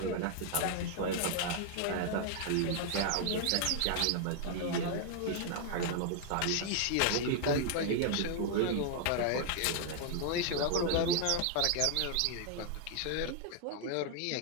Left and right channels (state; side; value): different; both; correlation 0.00